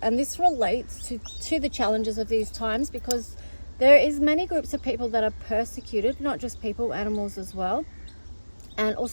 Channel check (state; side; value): inverted; both; correlation -1.00